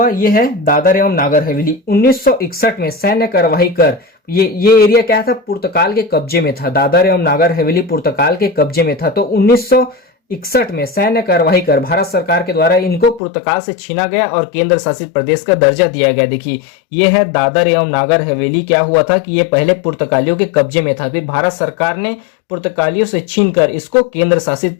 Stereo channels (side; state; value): right; drops out; at 13.2 s